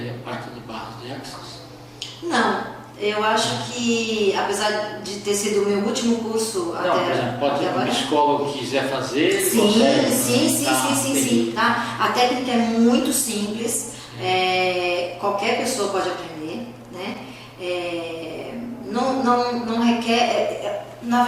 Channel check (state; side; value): identical; both; correlation 1.00